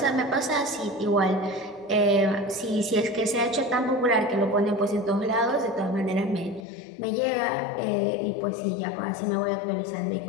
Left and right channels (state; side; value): drops out; right; at 6.6 s